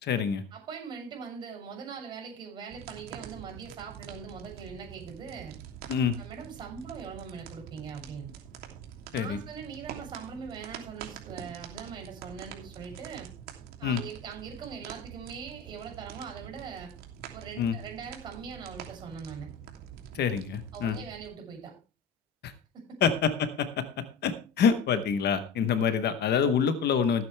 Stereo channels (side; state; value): right; quieter; 4.8 dB